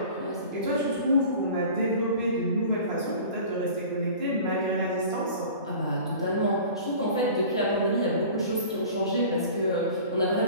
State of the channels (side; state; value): both; inverted; correlation -0.42